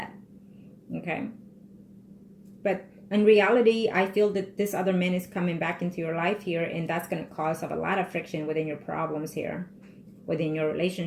Okay? But in reality, I feel that this other man is coming back into your life here, and that's going to cause a lot of friction within your problems here, within your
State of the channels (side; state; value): both; identical; correlation 1.00